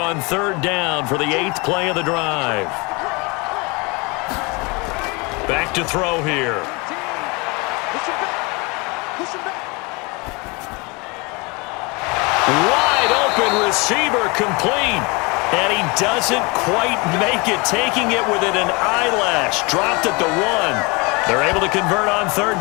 3rd down for the 8th play of the drive. Back to throw here. Wide open receiver complete. And he doesn't quite make it, taking it within an eyelash. Dropped at the 1. They're able to convert on 3rd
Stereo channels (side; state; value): right; quieter; 27.8 dB